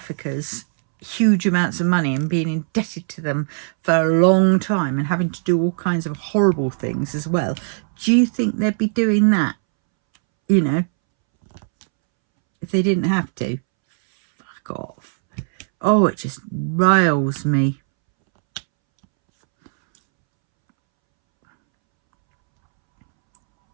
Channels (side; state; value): left; silent; 66 dB below the other